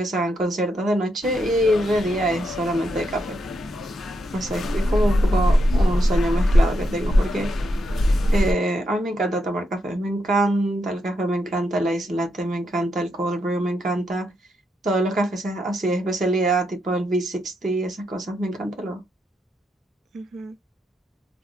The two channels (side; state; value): both; normal; correlation 0.81